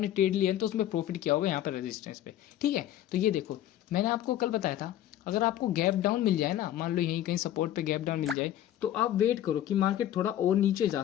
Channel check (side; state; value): right; quieter; 12.3 dB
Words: ट्रेड लिया है तो उसमें प्रॉफिट किया होगा यहाँ पर रेजिस्टेंस पे। ठीक है, तो ये देखो मैंने आपको कल बताया था, अगर आपको गैप डाउन मिल जाए ना, मान लो यहीं कहीं सपोर्ट पे गैप डाउन मिल जाए, तो आप वेट करो कि मार्केट थोड़ा और नीचे जा